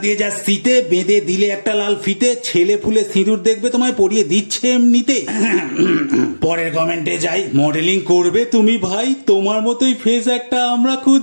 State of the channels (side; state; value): both; inverted; correlation -1.00